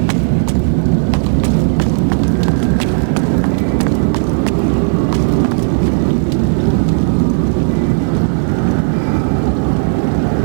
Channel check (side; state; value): left; silent; digital silence